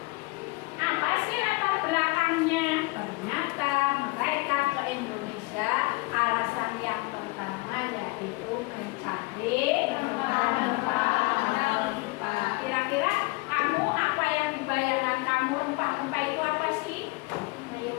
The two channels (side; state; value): right; quieter; 25.2 dB